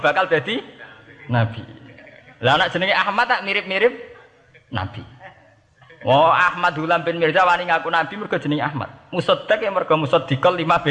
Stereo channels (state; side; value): identical; both; correlation 1.00